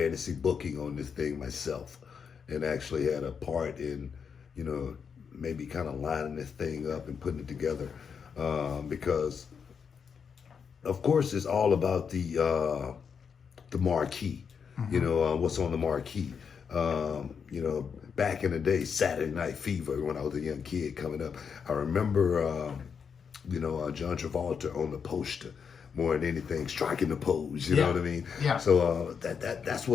booking on this thing myself, and actually had a part in, maybe kind of lining this thing up and putting it together, because of course it's all about the marquee. What's on the marquee. Back in the day, Saturday Night Fever, when I was a young kid coming up, I remember, John Travolta on the poster more than anything, striking the pose. You know what I mean? Yeah. So that's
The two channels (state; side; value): quieter; right; 6.5 dB